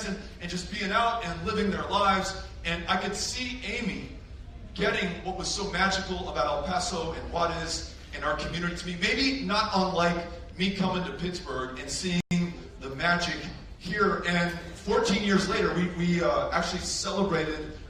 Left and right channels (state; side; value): identical; both; correlation 1.00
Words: and just being out and living their lives. And I could see Amy getting what was so magical about El Paso and Juarez and our community to me. Maybe not unlike me coming to Pittsburgh and seeing the magic here. And 14 years later, we actually celebrated